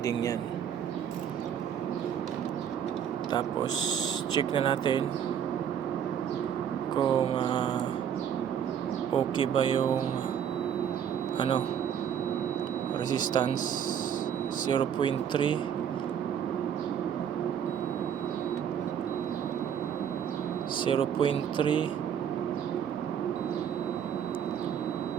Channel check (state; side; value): quieter; left; 8.7 dB